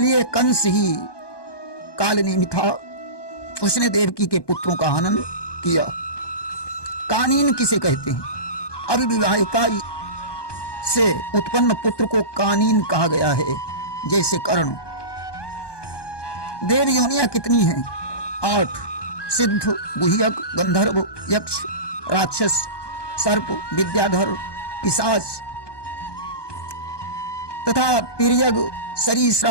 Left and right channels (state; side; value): late; right; 1.2 ms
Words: कंस ही कालनेमी था। उसने देवकी के पुत्रों का हनन किया। कानीन किसे कहते हैं? अविवाहिता से उत्पन्न पुत्र को कानीन कहा गया है। जैसे कर्ण। देव योनियां कितनी हैं? 8। सिद्ध, गुह्यक, गंधर्व, यक्ष, राक्षस, सर्प, विद्याधर, पिशाच तथा तिर्यक,